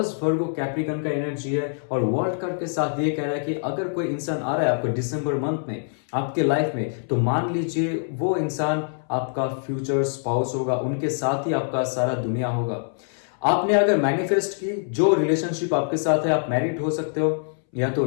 वर्गो कैप्रिकन का एनर्जी है, और वर्ल्ड कार्ड के साथ ये कह रहा है कि अगर कोई इंसान आ रहा है आपको दिसंबर मंथ में आपके लाइफ में, तो मान लीजिए वो इंसान आपका फ्यूचर स्पाउस होगा, उनके साथ ही आपका सारा दुनिया होगा। आपने अगर मैनिफेस्ट की, जो रिलेशनशिप आपके साथ है, आप मैरिड हो सकते हो या तो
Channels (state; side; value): silent; right; 62 dB below the other